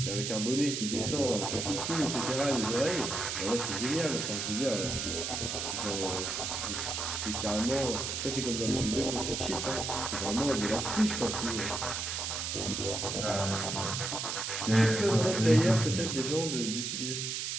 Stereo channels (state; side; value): noise; right; hiss, 2 dB below the sound